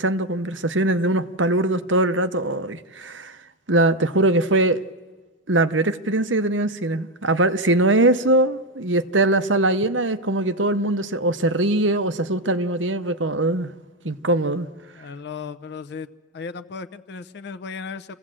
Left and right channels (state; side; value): normal; both; correlation 0.09